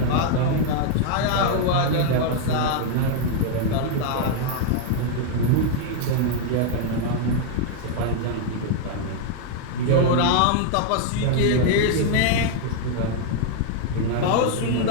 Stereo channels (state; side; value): different; both; correlation 0.00